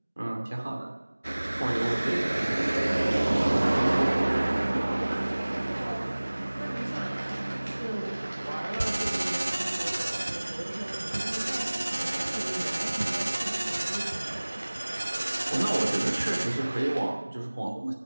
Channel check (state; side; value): inverted; both; correlation -1.00